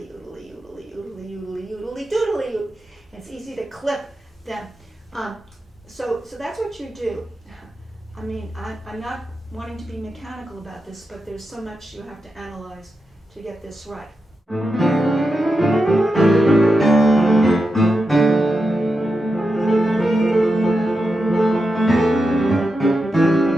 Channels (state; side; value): normal; both; correlation 0.88